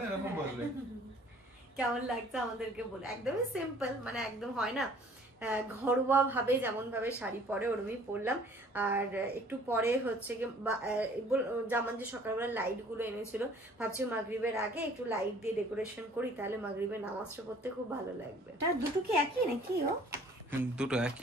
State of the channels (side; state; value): both; normal; correlation 0.54